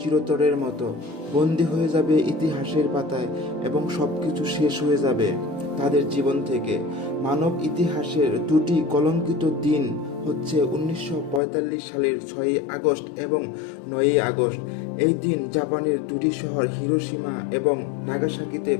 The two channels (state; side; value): drops out; right; at 11.4 s